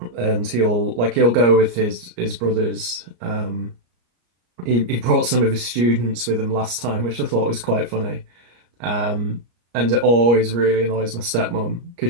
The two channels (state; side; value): late; left; 34 ms